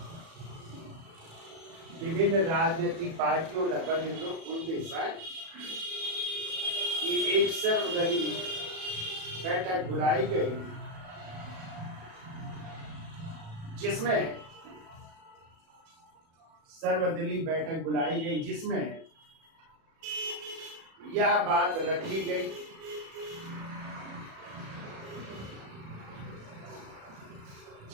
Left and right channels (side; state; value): left; late; 37 ms